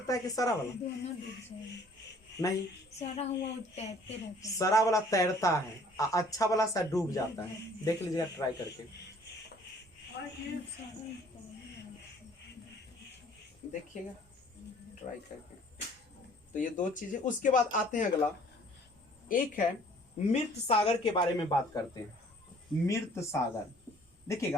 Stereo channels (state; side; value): normal; both; correlation 0.55